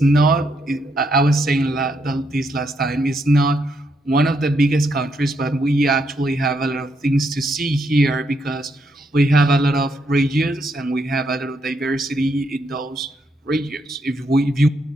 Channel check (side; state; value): both; normal; correlation 0.77